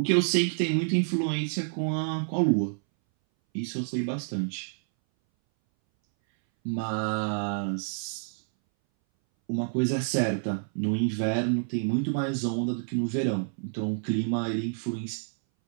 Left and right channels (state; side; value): silent; left; 59 dB below the other